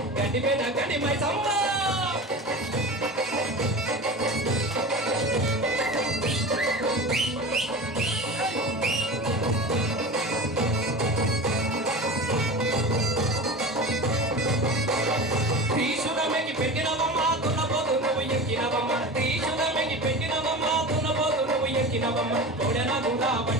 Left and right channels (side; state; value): both; normal; correlation 0.31